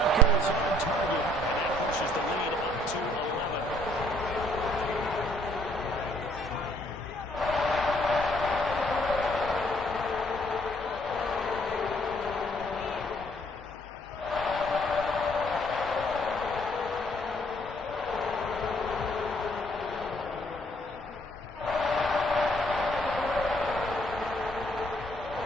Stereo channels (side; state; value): both; normal; correlation 0.64